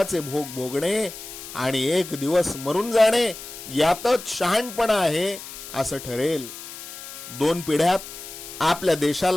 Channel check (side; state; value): left; noise; hiss, 12 dB below the sound